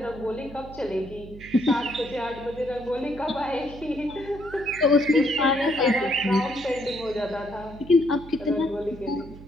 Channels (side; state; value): right; noise; hum, 16 dB below the sound